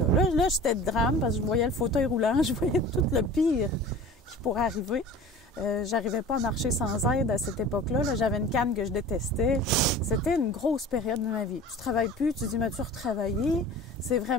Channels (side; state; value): both; normal; correlation 0.40